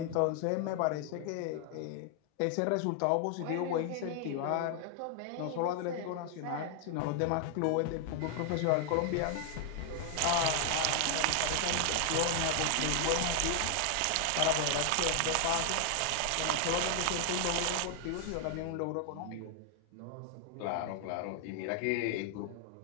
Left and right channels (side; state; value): both; different; correlation 0.00